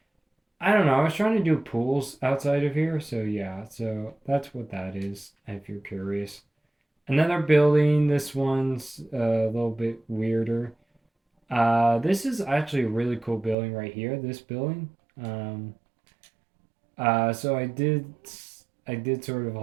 I don't know. I was trying to do pools outside of here, so yeah. So that's what that is. If you're curious, another building. This one's a little bit weirder. This is actually a really cool building right here. This building. Um, so I did sort of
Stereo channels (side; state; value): left; drops out; at 13.6 s